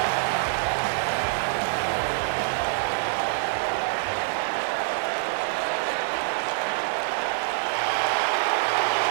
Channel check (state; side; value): silent; left; 61 dB below the other